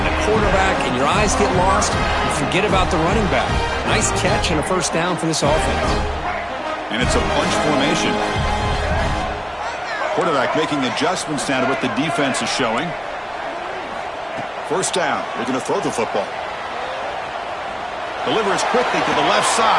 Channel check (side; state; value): both; identical; correlation 1.00